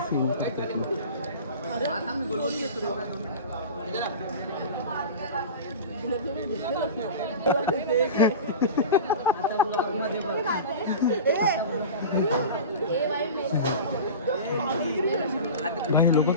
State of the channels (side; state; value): both; inverted; correlation -0.32